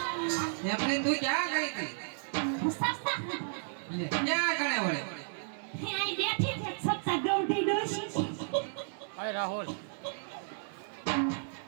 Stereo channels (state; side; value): silent; left; digital silence